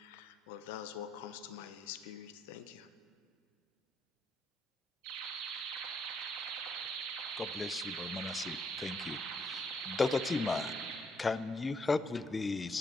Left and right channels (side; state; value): both; normal; correlation 0.72